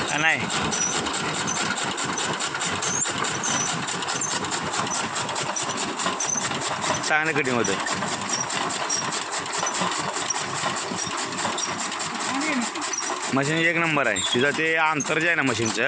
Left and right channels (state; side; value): identical; both; correlation 1.00